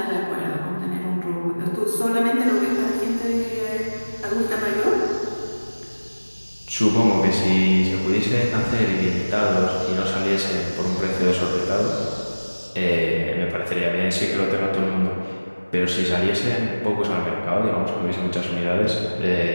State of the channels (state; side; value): inverted; both; correlation -1.00